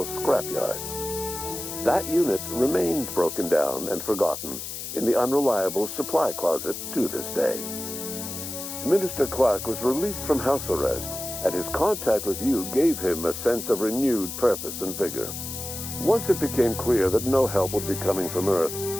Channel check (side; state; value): left; noise; hiss, 7 dB below the sound